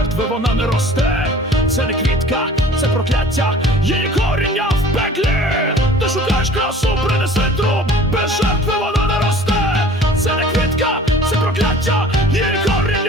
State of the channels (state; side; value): normal; both; correlation 0.47